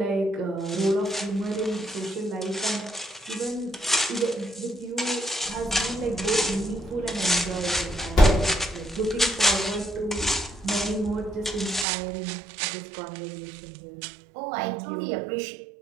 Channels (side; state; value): left; drops out; at 11.9 s